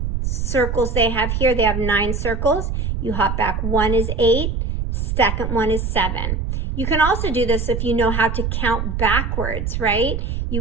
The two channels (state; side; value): noise; right; rumble, 2 dB below the sound